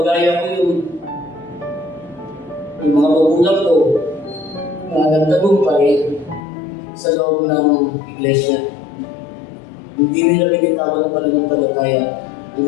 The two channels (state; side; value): drops out; right; at 6.4 s